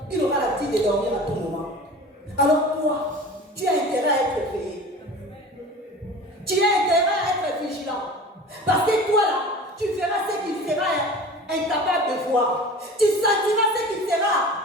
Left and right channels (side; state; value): both; normal; correlation 0.39